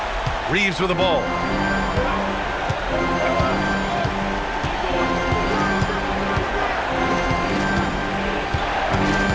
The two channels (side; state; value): both; identical; correlation 1.00